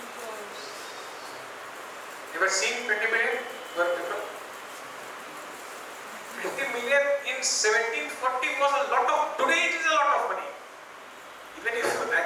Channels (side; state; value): both; identical; correlation 1.00